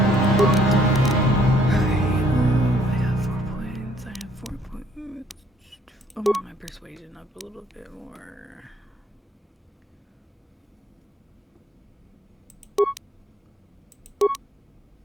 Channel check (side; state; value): both; normal; correlation 0.64